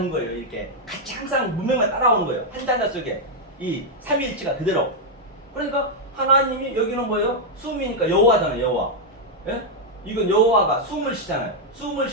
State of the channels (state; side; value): normal; both; correlation -0.01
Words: 거예요. 이렇게 같이 항상 문맥만 따라오는 거예요. 한 단자 속에 이 삼위일체가 그대로. 그러니까 하나님이 여기는 뭐예요? 숨이니까 여호와잖아요. 여호와. 예? 이건 여호와가 숨을 쉬잖아요. 숨을